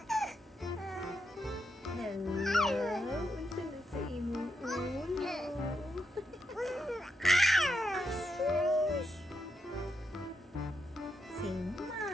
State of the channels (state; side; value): normal; both; correlation 0.82